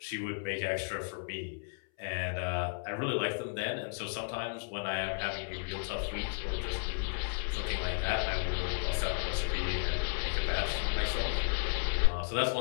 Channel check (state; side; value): silent; right; 55 dB below the other